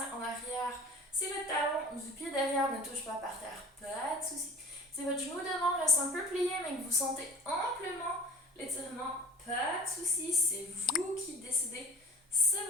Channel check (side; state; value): both; normal; correlation 0.43